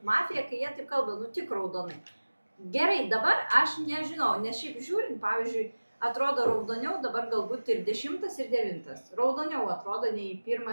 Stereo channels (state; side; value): inverted; both; correlation -1.00